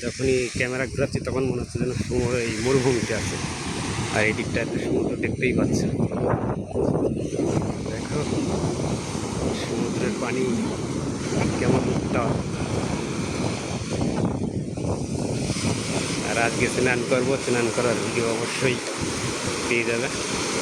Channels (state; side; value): identical; both; correlation 1.00